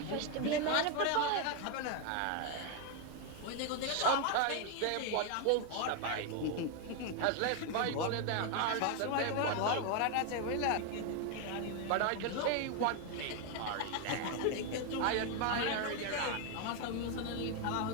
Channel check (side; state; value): both; different; correlation 0.01